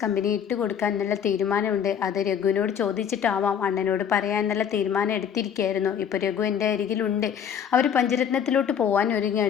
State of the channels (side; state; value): right; quieter; 8.2 dB